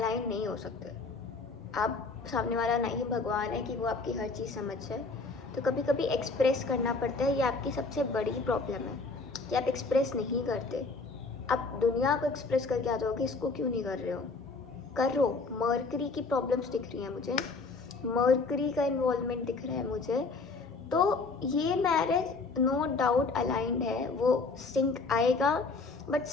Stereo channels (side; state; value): right; quieter; 4.0 dB